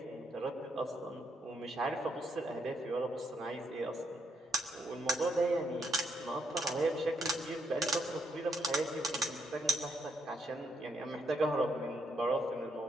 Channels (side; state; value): both; normal; correlation 0.76